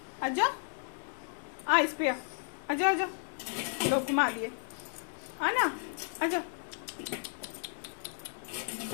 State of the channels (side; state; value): right; silent; digital silence